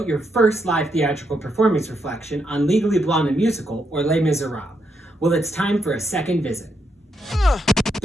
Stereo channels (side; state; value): both; normal; correlation 0.79